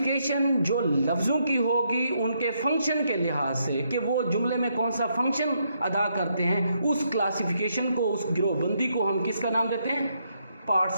जो लफ्ज़ों की होगी उनके फंक्शन के लिहाज से, कि वो जुमले में कौन सा फंक्शन अदा करते हैं, उस क्लासिफिकेशन को, उस गिरोहबंदी को हम किसका नाम देते हैं?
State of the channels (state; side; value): inverted; both; correlation -0.76